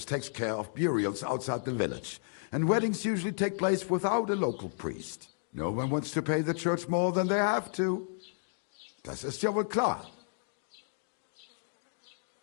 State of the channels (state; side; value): silent; right; digital silence